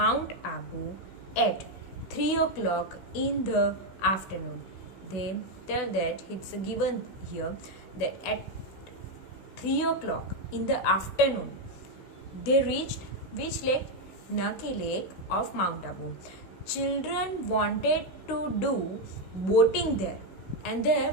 Abu at 3 o'clock in the afternoon. They tell that it's given here that at 3 o'clock in the afternoon they reached which lake? Nucky Lake of Mount Abu. Children wanted to do boating there, and there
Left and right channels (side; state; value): right; late; 16 ms